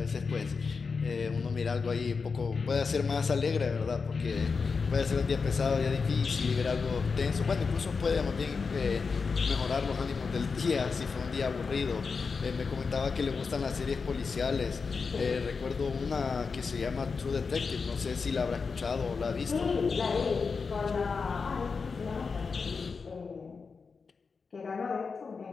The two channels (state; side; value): quieter; right; 5.0 dB